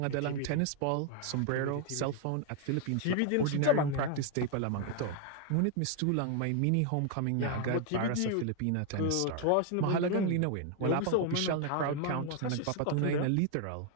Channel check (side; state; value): both; different; correlation 0.00